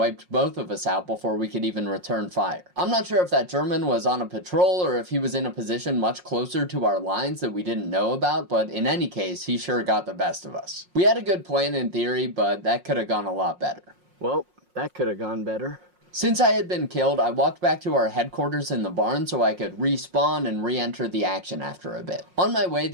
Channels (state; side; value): late; left; 5.5 ms